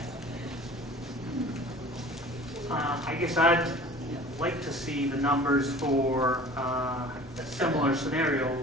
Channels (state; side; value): normal; both; correlation 0.44